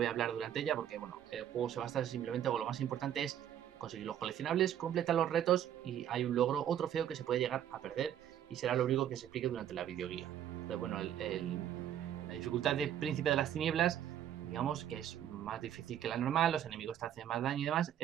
a hablar durante ella porque bueno, el juego se basa simplemente, o lo más importante es conseguir los coleccionables, completar los retos y hay un logro o trofeo que se puede llegar a perder y será lo único que se explique durante la videoguía. Entonces bueno, la dificultad de Príncipe de las Tinieblas, digamos que es más difícil que la normal, los enemigos te hacen más daño y demás,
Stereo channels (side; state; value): left; quieter; 10.6 dB